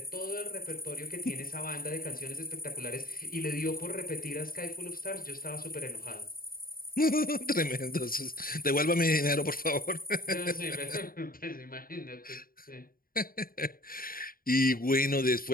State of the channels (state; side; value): late; right; 0.42 ms